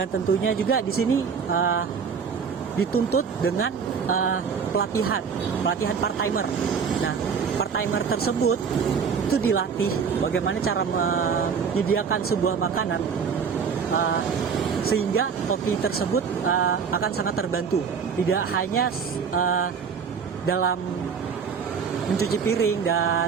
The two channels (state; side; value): quieter; left; 6.2 dB